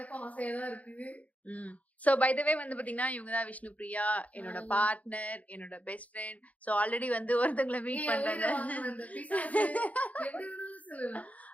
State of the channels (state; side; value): late; right; 0.070 ms